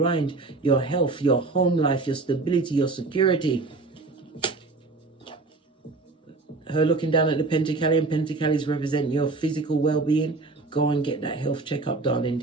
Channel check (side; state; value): left; quieter; 3.6 dB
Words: your health, your home life, your stability, your security. Her looking down at the Pentacle, and Pentacles represent your physical well-being. Go and get that health checkup, darling